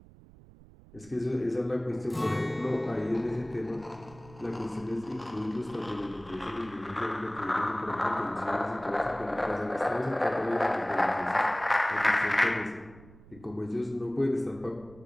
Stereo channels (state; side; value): noise; right; rumble, 22 dB below the sound